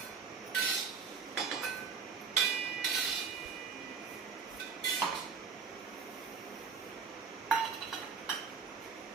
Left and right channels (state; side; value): quieter; left; 5.7 dB